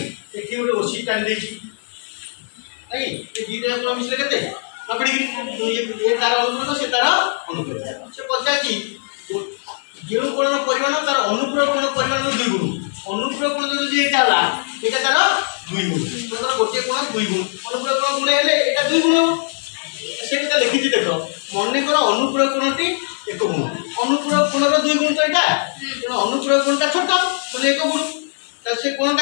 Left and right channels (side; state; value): right; silent; 66 dB below the other